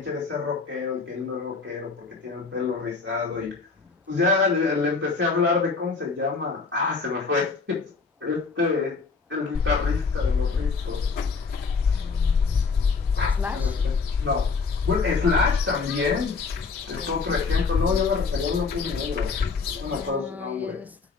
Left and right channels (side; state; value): right; quieter; 4.6 dB